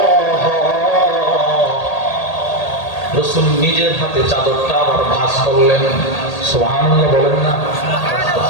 রাসূল নিজের হাতে চাদরটা আবার ভাঁজ করলেন। সুবহানাল্লাহ বলেন না,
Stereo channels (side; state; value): right; late; 1.8 ms